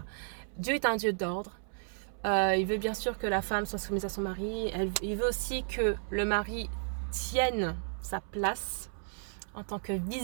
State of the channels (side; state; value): left; silent; 56 dB below the other